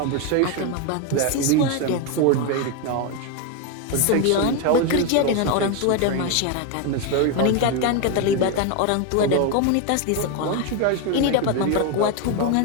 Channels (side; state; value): both; different; correlation 0.01